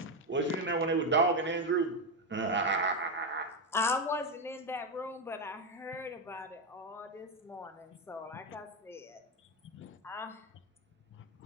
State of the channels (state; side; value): normal; both; correlation 0.08